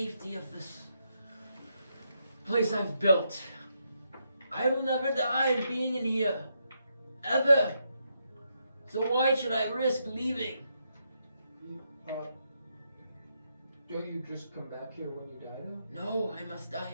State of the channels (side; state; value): both; inverted; correlation -0.80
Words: of this place I've built. I will never die being in here. Ever. So why should I risk leaving? Don't you just come back here when you die? No, I must die